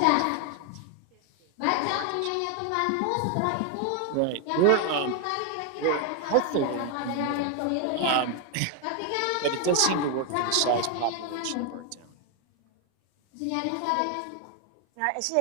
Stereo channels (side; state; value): both; different; correlation 0.01